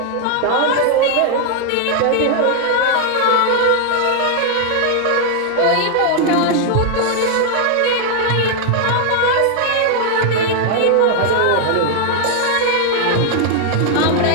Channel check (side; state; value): both; different; correlation 0.00